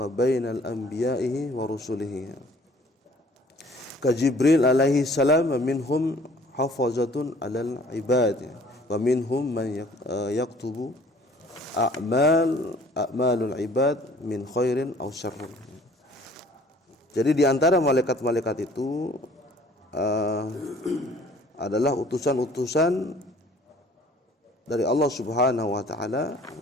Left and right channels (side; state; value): both; normal; correlation 0.53